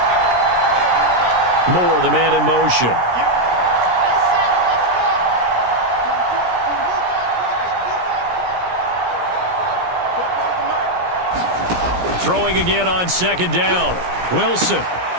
Moore, the man in motion. Throwing again on 2nd down. Wilson.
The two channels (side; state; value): left; late; 17 ms